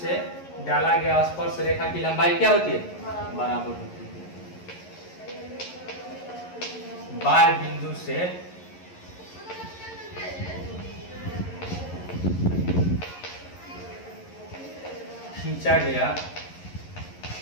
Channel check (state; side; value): late; right; 11 ms